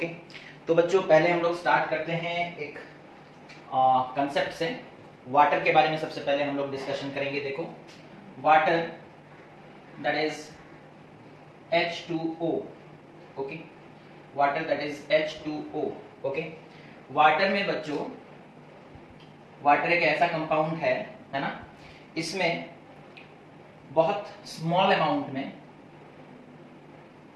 तो बच्चों पहले हम लोग start करते हैं एक concept से. Water के बारे में सबसे पहले हम लोग डिस्कशन करेंगे. देखो, water that is H2O. Okay, water that is H2O. Okay, water में बच्चों, वाटर एक ऐसा कंपाउंड है ना, इसमें बहुत स्मॉल अमाउंट में,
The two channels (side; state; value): both; identical; correlation 1.00